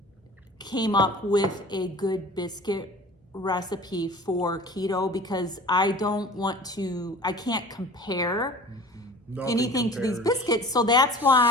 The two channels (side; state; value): both; normal; correlation 0.43